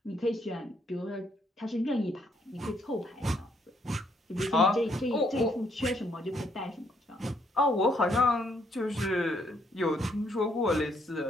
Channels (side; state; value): both; normal; correlation 0.71